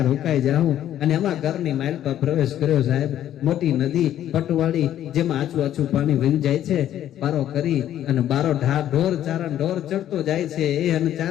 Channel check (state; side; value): quieter; right; 11.6 dB